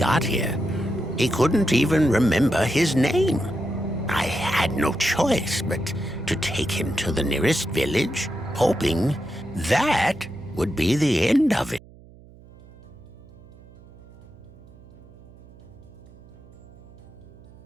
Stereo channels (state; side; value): noise; right; hum, 22 dB below the sound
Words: here. He couldn't even remember his name. I had no choice but to take him to the nearest village, hoping that would be the end of it.